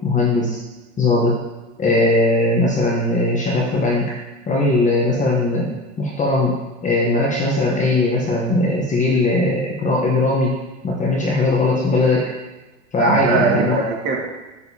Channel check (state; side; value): normal; both; correlation 0.31